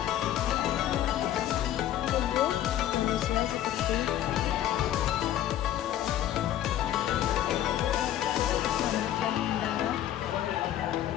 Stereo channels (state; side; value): quieter; right; 12.0 dB